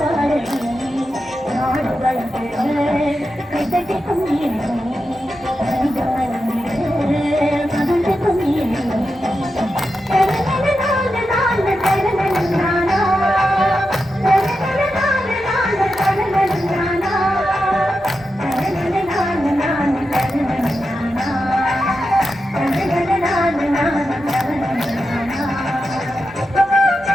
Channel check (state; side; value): normal; both; correlation 0.89